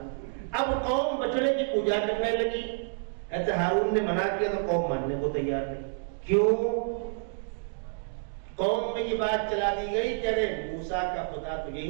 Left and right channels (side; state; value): left; silent; digital silence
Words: اب قوم بچڑے کی پوجا کرنے لگی. ایسے ہارون نے منع کیا تو قوم ماننے کو تیار نہیں. کیوں؟ قوم میں یہ بات چلا دی گئی کہ ارے موسیٰ کا خدا تو